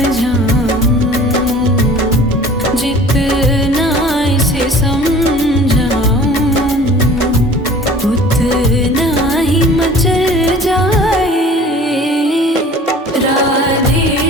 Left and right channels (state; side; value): normal; both; correlation 0.46